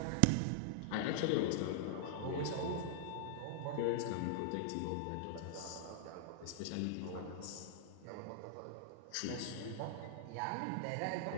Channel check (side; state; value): both; different; correlation -0.01